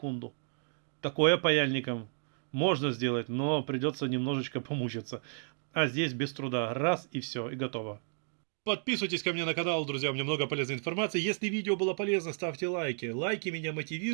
Такое паяльником можно сделать, но придется немножечко помучиться. А здесь без труда. Раз и все, и готово. Подписывайтесь ко мне на канал, друзья, у меня много полезной информации. Если видео было полезно, ставьте лайки. Лайки меня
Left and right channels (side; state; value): left; silent; 56 dB below the other